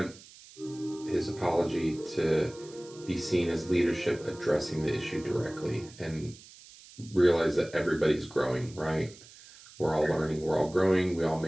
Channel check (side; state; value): right; noise; hiss, 21 dB below the sound